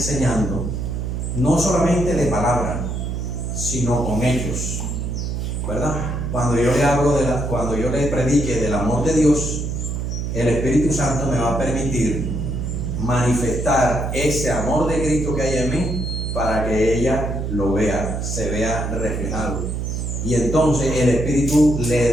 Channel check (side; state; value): right; noise; hum, 3 dB below the sound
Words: no solamente de palabra, sino con hechos, ¿verdad? Cuando yo le hablo cuando yo le predique del amor de Dios, el Espíritu Santo me va a permitir manifestar ese amor de Cristo que hay en mí para que ella lo vea, se vea reflejado. Y entonces el Espíritu le